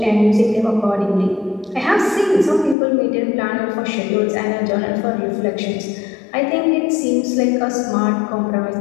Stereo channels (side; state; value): right; drops out; at 2.8 s